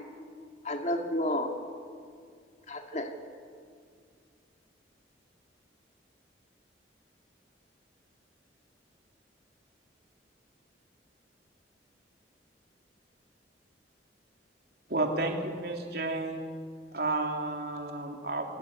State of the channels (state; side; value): normal; both; correlation -0.01